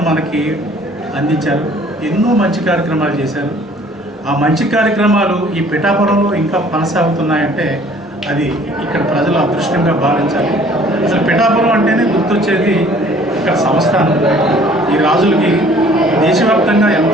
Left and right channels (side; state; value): both; normal; correlation 0.55